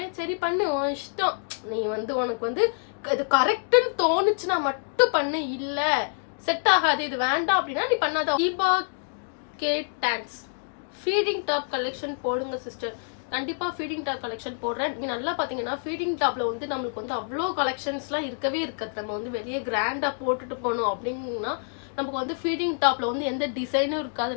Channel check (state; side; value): silent; right; 60 dB below the other